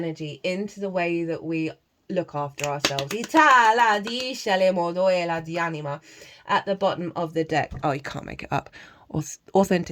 into the way that we look after ourselves. At the bottom of the deck, oh, you can't make it up.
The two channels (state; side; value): identical; both; correlation 1.00